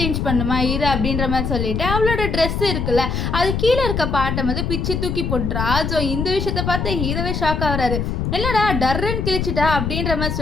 சேஞ்ச் பண்ணுமா ஹீரோ அப்படின்ற மாதிரி சொல்லிட்டு அவளோட ட்ரெஸ் இருக்குல்ல அது கீழே இருக்க பாட்டை வந்து பிச்சு தூக்கி போட்டுறா. ஸோ இந்த விஷயத்தை பார்த்து ஹீரோவே ஷாக் ஆகுறாரு. இல்லைடா டர்ரன் கிழிச்சிட்டா அப்படின்ற மாதிரி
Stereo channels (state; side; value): noise; left; rumble, 1 dB below the sound